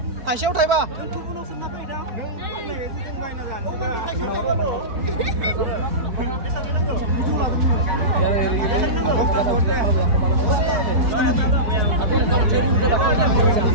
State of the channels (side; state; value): left; late; 4.8 ms